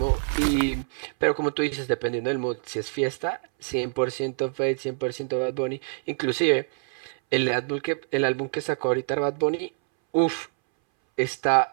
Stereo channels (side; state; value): left; silent; 61 dB below the other